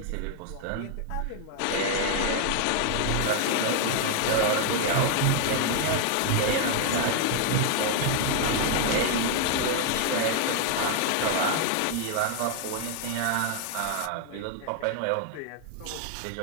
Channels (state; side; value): different; both; correlation 0.00